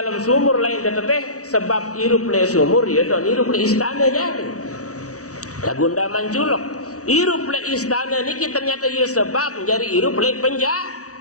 sumur lain teteteh sebab hirup le sumur ya don hirup le istana jadi lagunda manculok. Hirup le istana niki ternyata ia sebab menjadi hirup le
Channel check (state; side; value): late; right; 0.66 ms